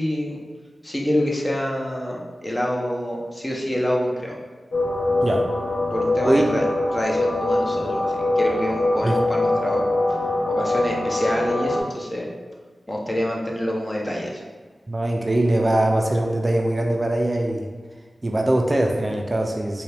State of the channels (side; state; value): both; normal; correlation 0.95